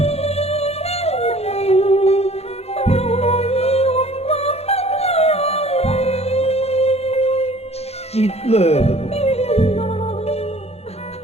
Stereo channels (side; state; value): right; late; 0.30 ms